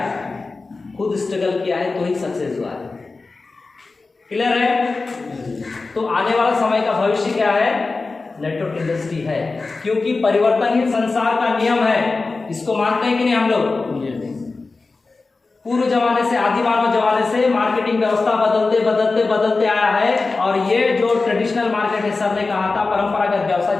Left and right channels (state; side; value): quieter; right; 3.8 dB